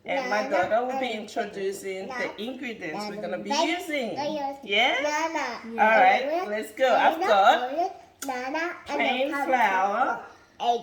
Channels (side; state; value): both; identical; correlation 1.00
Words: And my daughter will be introducing the ingredients we're going to be using. Yeah? Alright, let's go. I've got plain flour,